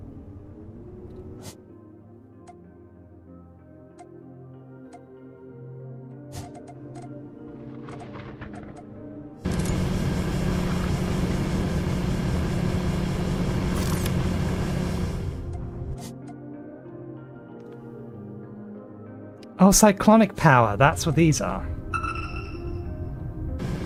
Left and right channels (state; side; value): identical; both; correlation 1.00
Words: Oh, cyclonic power, that's what these are.